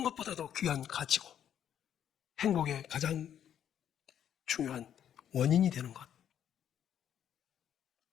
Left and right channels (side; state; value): right; quieter; 9.7 dB